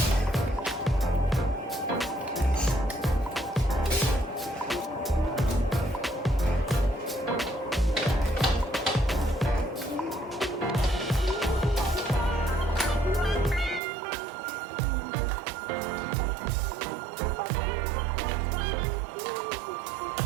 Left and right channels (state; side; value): drops out; left; at 13.8 s